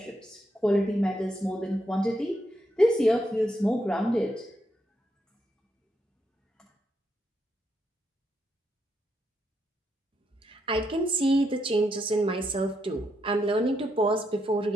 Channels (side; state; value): both; normal; correlation 0.80